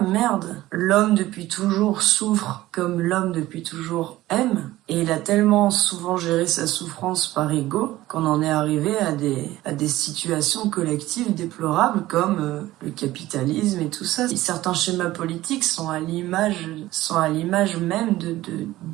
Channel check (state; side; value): quieter; left; 16.4 dB